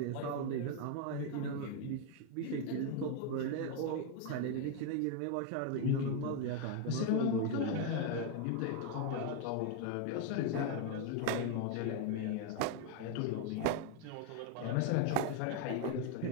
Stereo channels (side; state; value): both; different; correlation 0.01